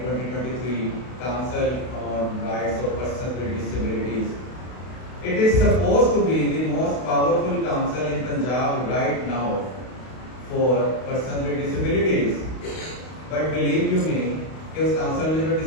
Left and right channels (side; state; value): right; late; 32 ms